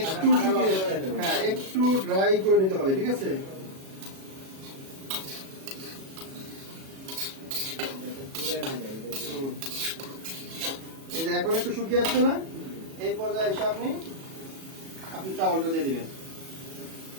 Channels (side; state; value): left; late; 37 ms